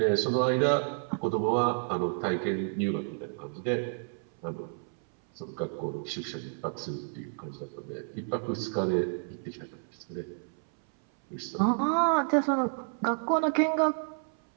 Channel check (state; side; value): silent; left; 58 dB below the other